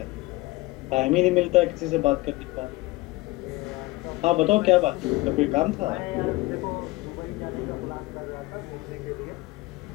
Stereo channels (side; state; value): right; quieter; 20.5 dB